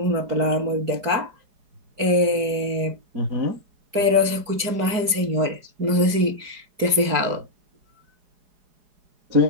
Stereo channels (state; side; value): late; left; 4.5 ms